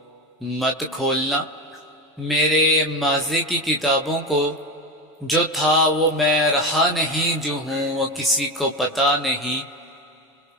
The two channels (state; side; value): normal; both; correlation 0.20